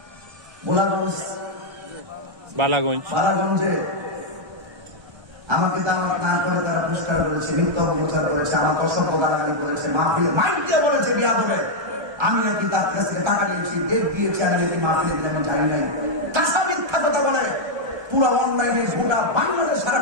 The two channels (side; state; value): left; late; 1.2 ms